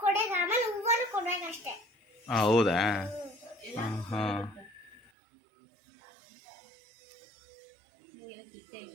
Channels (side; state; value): left; drops out; at 5.1 s